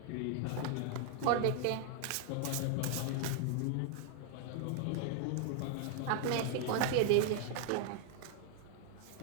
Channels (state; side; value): different; both; correlation 0.00